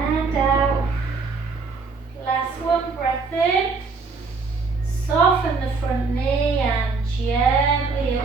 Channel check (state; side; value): quieter; left; 4.4 dB